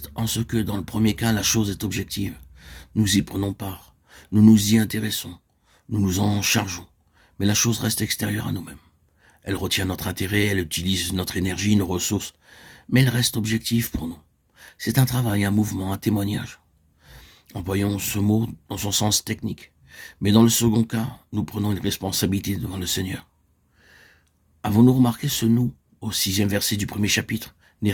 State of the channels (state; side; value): identical; both; correlation 1.00